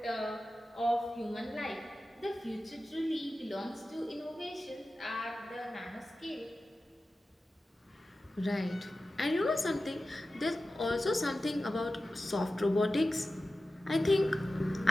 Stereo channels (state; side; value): normal; both; correlation 0.94